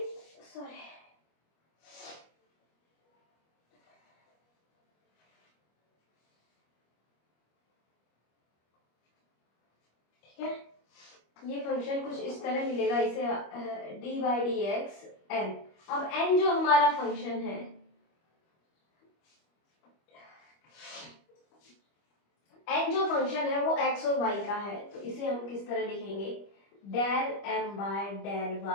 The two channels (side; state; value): right; late; 25 ms